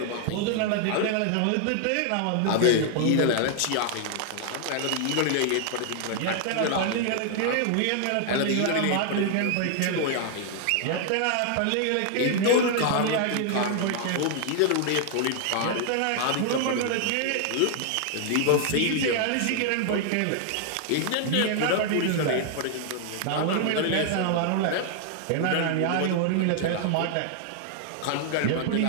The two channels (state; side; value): different; both; correlation 0.00